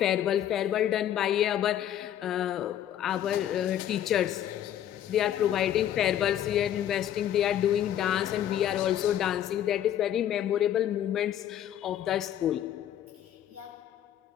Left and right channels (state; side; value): quieter; right; 11.0 dB